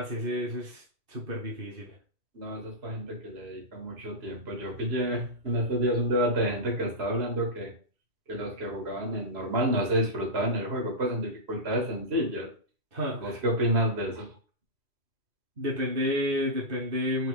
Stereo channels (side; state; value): left; late; 2.9 ms